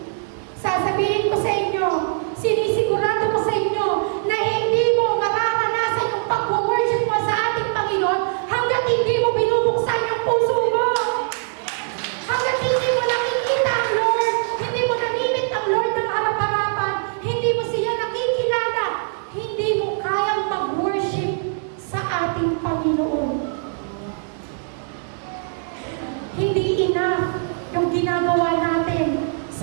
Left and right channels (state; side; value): silent; left; digital silence